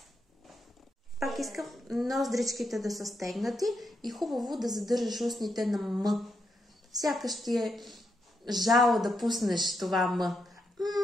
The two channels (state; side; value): normal; both; correlation 0.81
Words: Пак искам ноздричките да са стегнати и хубаво да задържаш устните на М. Сякаш ти е жало да пуснеш това М.